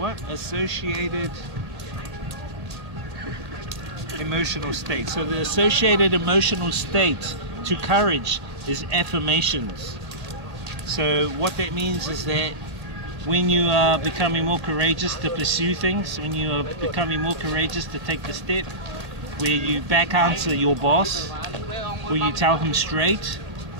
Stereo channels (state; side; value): late; left; 1.8 ms